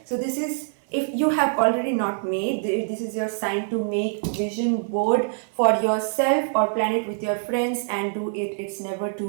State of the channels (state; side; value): silent; left; 56 dB below the other